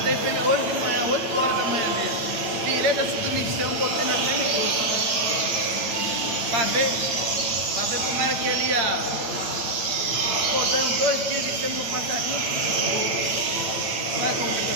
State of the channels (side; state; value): left; late; 9.0 ms